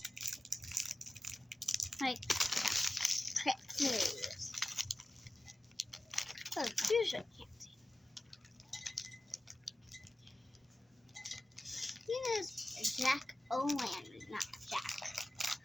Like, pretzels. Oh, fusion candy. You know, it's Jack O'Lantern, not Jack.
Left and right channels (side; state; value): both; normal; correlation 0.95